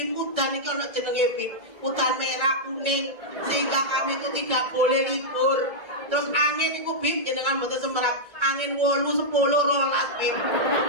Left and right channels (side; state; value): left; late; 1.3 ms